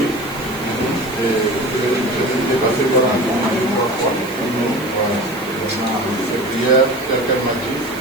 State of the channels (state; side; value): noise; right; hiss, 17 dB below the sound